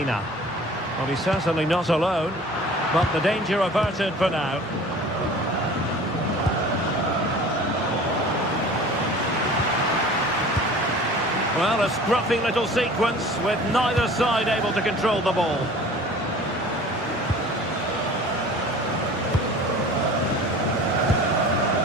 Well, he's certainly not alone, but the danger averted for now. Well, a scruffy little sequence with neither side able to control the ball.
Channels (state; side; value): normal; both; correlation 0.44